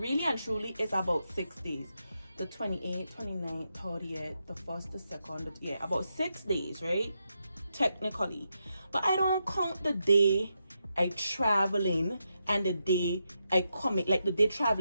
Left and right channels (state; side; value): inverted; both; correlation -0.84